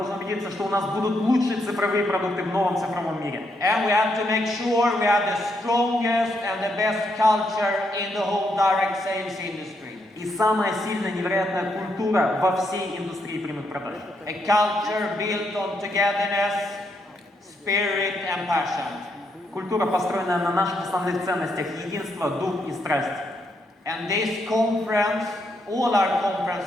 убедиться, что у нас будут лучшие цифровые продукты в новом цифровом мире. And we have to make sure we have the strongest and the best culture in the whole direct sales industry. И самая сильная, невероятная культура во всей индустрии прямых продаж. A culture built on togetherness, spirit and passion. Культура, построенная на наших основных ценностях: единство, дух и страсть. And this conference, all our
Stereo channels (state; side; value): normal; both; correlation 0.78